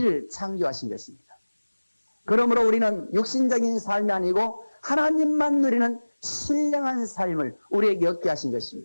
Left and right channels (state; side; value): inverted; both; correlation -1.00